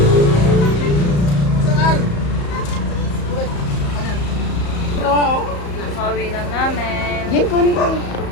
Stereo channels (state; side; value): late; right; 34 ms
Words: Pauwi lang namin.